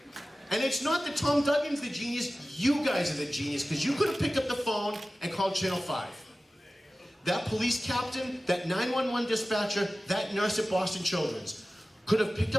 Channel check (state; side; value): normal; both; correlation 0.96